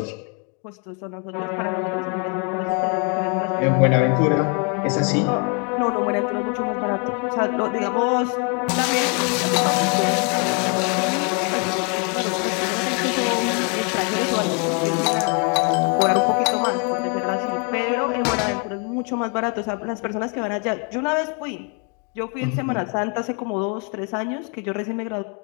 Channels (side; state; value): right; quieter; 36.2 dB